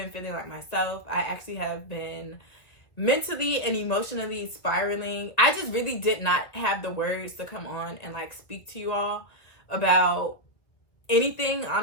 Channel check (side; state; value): right; late; 2.2 ms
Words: feeling like myself. I actually have been mentally and emotionally spiraling. I just really did not have the words to come on and speak to you all about anything,